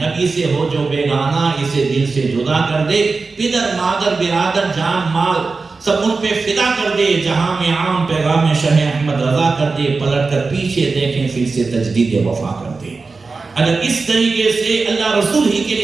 نبی سے ہو جو بیگانہ اسے دل سے جدا کر دے، پدر مادر برادر جان مال سب ان پہ فدا کر دے، جہاں میں عام پیغام شہ احمد رضا کر دے، پلٹ کر پیچھے دیکھیں پھر سے تجدید وفا کر دے۔ اگر اس طریقے سے اللہ رسول ہی کے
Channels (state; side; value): quieter; left; 4.1 dB